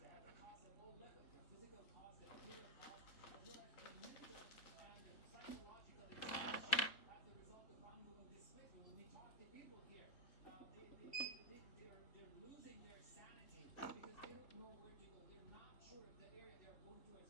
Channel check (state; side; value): late; right; 3.7 ms